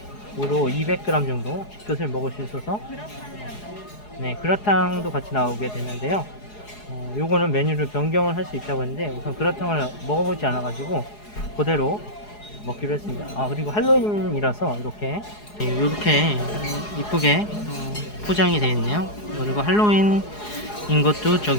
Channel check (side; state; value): right; late; 4.8 ms